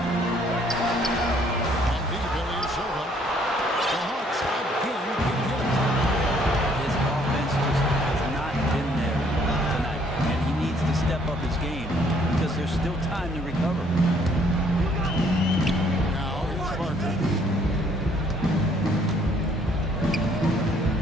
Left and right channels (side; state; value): both; normal; correlation 0.63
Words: On deep, Ilyasova. The Hawks again get hit. His offense just has not been there tonight, and he needs to step up his game because there's still time to recover. Now here's Parker.